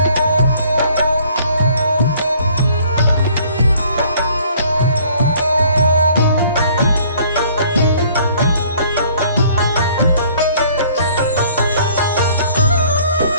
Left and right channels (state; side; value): inverted; both; correlation -0.58